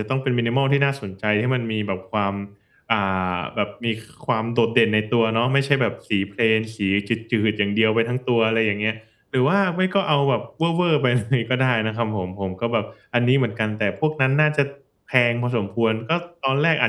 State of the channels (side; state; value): both; identical; correlation 1.00